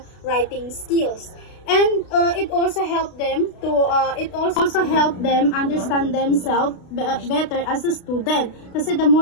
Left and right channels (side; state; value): right; late; 32 ms